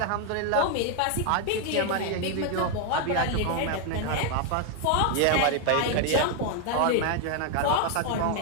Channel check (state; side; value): different; both; correlation 0.00